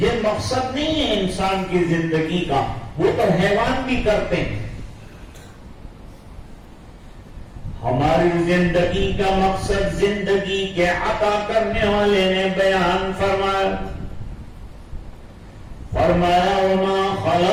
مقصد نہیں ہے انسان کی زندگی کا، وہ تو حیوان بھی کرتے ہیں. ہماری زندگی کا مقصد زندگی کے عطا کرنے والے نے بیان فرمایا وَمَا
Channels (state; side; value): identical; both; correlation 1.00